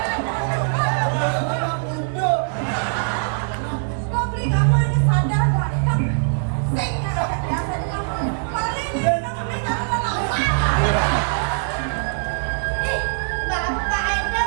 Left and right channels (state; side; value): silent; left; digital silence